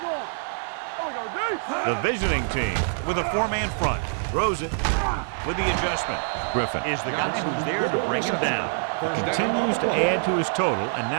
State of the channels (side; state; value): left; silent; digital silence